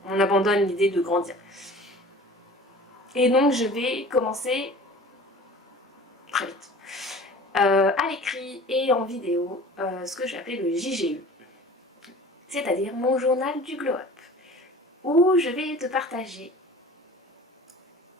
on abandonne l'idée de grandir. Et donc je vais commencer très vite à l'écrit et en vidéo ce que j'ai appelé le JGU, c'est-à-dire mon journal du glow-up, où je vais te partager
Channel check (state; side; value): normal; both; correlation 0.43